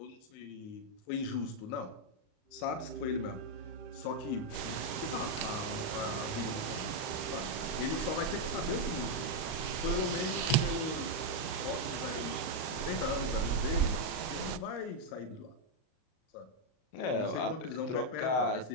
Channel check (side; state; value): right; late; 38 ms